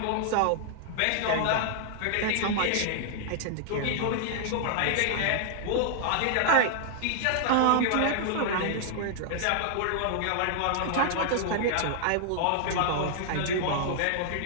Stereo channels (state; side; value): different; both; correlation -0.01